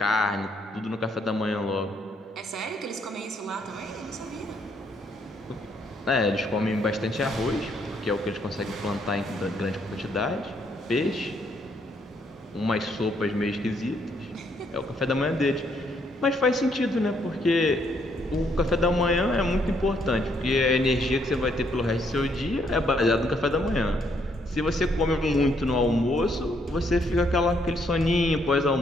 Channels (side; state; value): both; normal; correlation 0.71